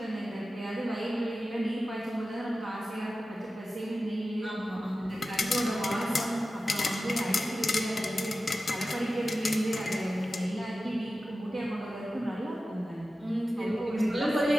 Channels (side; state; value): both; normal; correlation 0.94